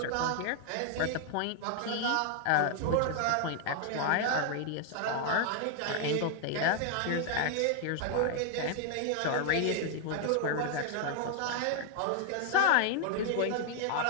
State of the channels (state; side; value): different; both; correlation 0.00